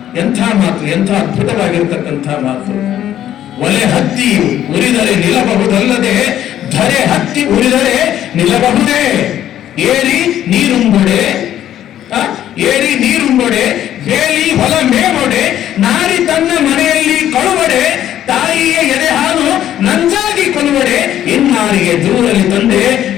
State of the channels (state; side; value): quieter; right; 11.6 dB